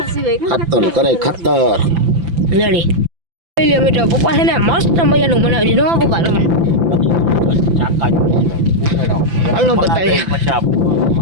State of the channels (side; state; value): left; late; 5.9 ms